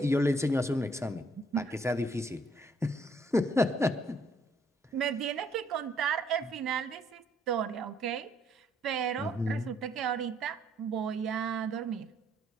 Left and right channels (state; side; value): normal; both; correlation 0.67